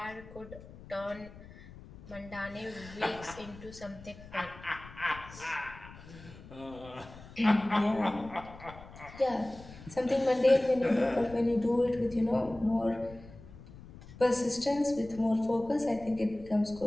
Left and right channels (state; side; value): noise; left; rumble, 18 dB below the sound